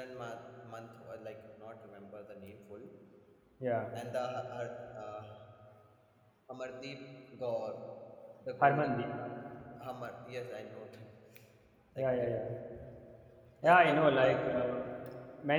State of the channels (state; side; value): identical; both; correlation 1.00